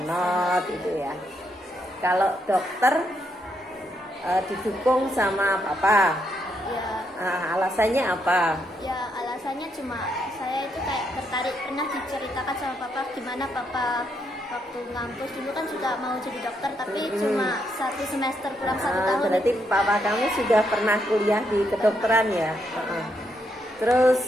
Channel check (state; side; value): normal; both; correlation 0.77